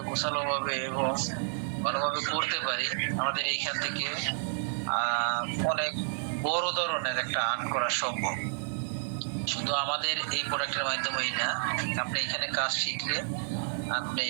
গোছালোভাবে এবং ভালোভাবে করতে পারি, আমাদের এইখান থেকে অনেক বড় ধরনের একটা আর্ন করা সম্ভব। শুধু আমাদের এই প্রোডাক্টের মাধ্যমেই না, আপনি এখানে কাজ শিখলে আপনি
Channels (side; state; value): left; silent; 57 dB below the other